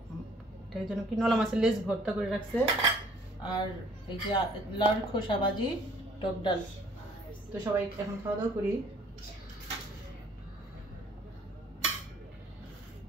এটার জন্য কি নলা মাছের লেজ ভর্তা করে রাখছে। আর এই যে লাউর খোসা ভাজি, টক ডাল। তো সবাই এখন খাওয়া দাওয়া করি।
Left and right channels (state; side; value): normal; both; correlation 0.58